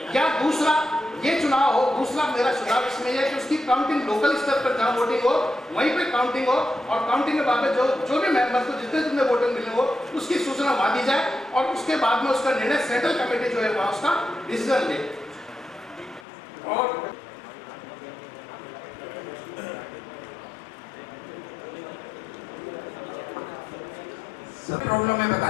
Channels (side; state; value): right; drops out; at 16.2 s